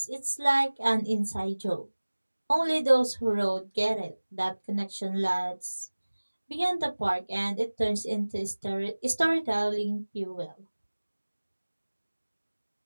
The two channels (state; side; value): inverted; both; correlation -1.00